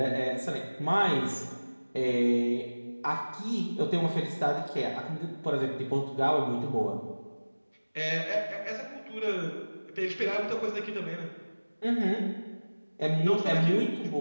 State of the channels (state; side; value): inverted; both; correlation -1.00